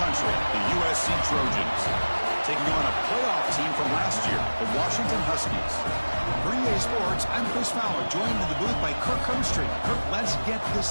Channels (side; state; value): both; inverted; correlation -1.00